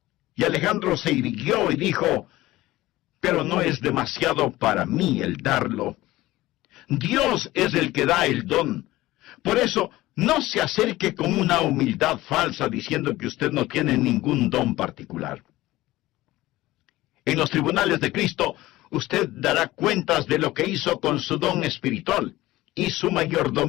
Y Alejandro se irguió y dijo, pero no es demasiado para mí el darlo. Dios es el que da el don. Por eso, no se acerque con una humildad falsa diciendo que usted no tiene ningún don particular. En los tribunales de Cristo, usted dará cuentas de lo que hizo con su don espiritual y su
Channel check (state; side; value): quieter; right; 17.5 dB